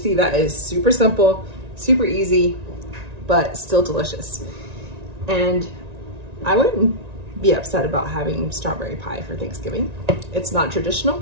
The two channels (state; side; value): late; left; 1.9 ms